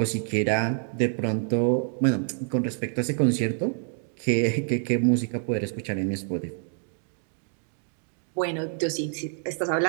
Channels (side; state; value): left; silent; 56 dB below the other